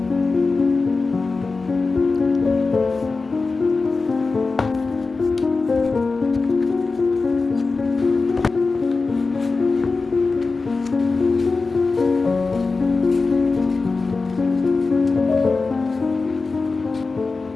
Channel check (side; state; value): right; quieter; 4.0 dB